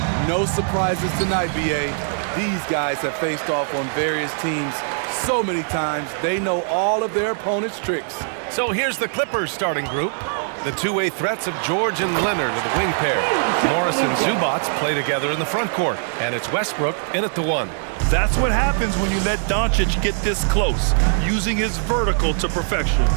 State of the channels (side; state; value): left; silent; digital silence